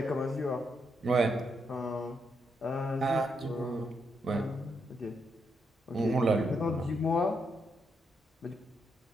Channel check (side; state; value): both; normal; correlation 0.79